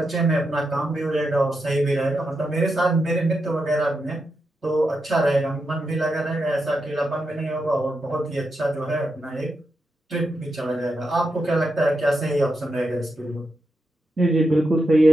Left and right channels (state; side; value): normal; both; correlation 0.86